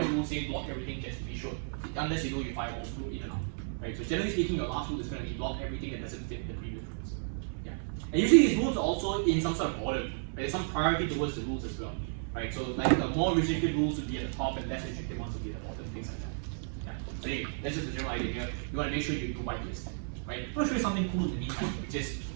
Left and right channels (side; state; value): left; silent; digital silence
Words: rule saying block everything just to be sure, unless you know your firewall through in and out, right? So generally speaking, your last rule is going to be block everything that doesn't fit the previous rules. Yeah, and usually these rules are also in some sort of order. Right? There's some priority towards the rules as well, right? So like the more restricted rules would be at the top, and less restricted ones would be at the bottom, things like that. Yeah. So anyway, that's just the general idea here. You want to make sure you do whitelist, right? I'm going to show you something cool in the meantime, which is